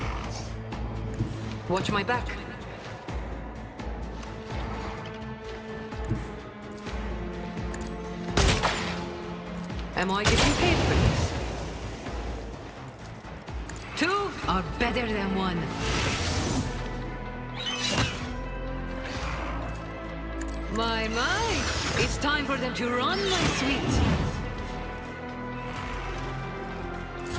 Watch my back. Am I getting paid for this? are better than one. My, it's time for them to run, my sweet.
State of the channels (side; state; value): both; identical; correlation 1.00